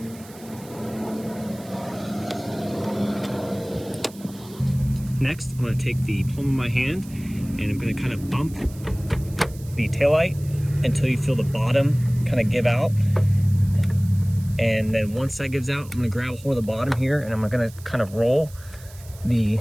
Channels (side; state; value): right; noise; hiss, 21 dB below the sound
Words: Next, I'm going to take the palm of my hand and I'm going to kind of bump the taillight until you feel the bottom kind of give out. And then once that gives out, I'm going to grab a hold of the bottom here, and I'm going to kind of roll the